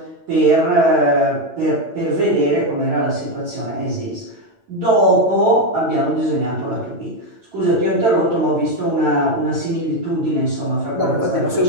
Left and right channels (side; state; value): left; late; 9.0 ms